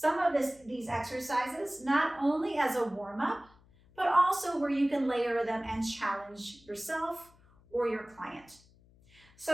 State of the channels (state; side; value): noise; left; hum, 28 dB below the sound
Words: of these exercises not only as a warm-up, but also where you can layer them and challenge yourself or your client.